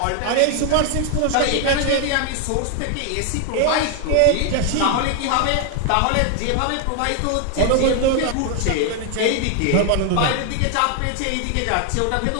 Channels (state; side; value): different; both; correlation 0.00